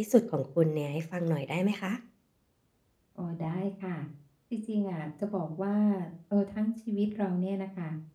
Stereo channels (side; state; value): both; identical; correlation 1.00